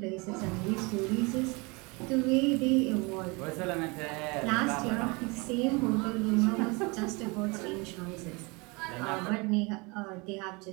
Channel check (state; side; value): quieter; left; 27.5 dB